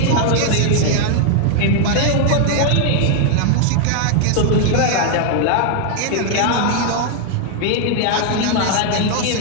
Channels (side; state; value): both; different; correlation 0.00